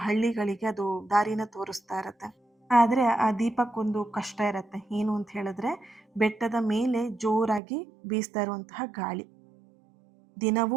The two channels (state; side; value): drops out; left; at 7.6 s